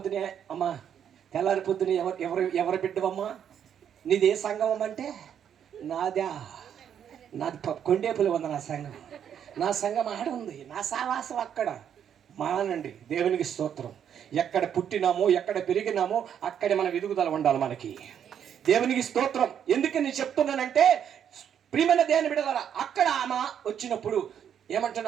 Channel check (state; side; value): quieter; left; 8.8 dB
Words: అమ్మా, తెల్లారి పొద్దునే ఎవరు బిడ్డవమ్మా? నీది ఏ సంఘం అంటే? నాది కొండేపులు ఉంది నా సంఘం. నా సంఘం ఆడ ఉంది, నా సావాసం అక్కడ. మానండి. దేవునికి స్తోత్రం. ఎక్కడ పుట్టినామో, ఎక్కడ పెరిగినామో అక్కడే మన ఎదుగుదల ఉండాలి మనకి. దేవునికి స్తోత్రం. ఎందుకు నేను చెప్తున్నానంటే, ప్రియమైన దేవుని బిడ్డలారా, అక్కడ ఆమె వచ్చినప్పుడు